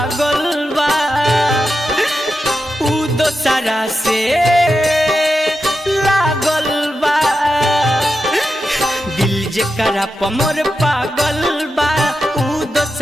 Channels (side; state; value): both; normal; correlation 0.89